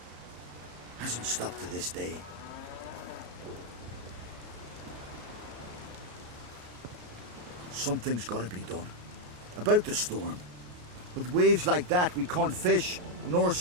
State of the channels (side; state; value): left; late; 34 ms